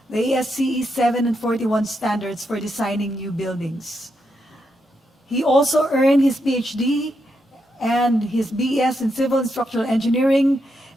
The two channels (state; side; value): normal; both; correlation 0.82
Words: the ASCE 7 and 41 standards for designing new buildings. He also earned his PhD and his BS in Civil and Structural Engineering